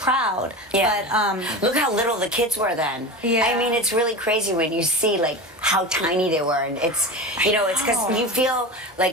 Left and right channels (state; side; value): normal; both; correlation 0.27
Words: Yeah. But Look how little the kids were then. Yeah. I mean, it's really crazy when you see like how tiny they were, and it's it's because you feel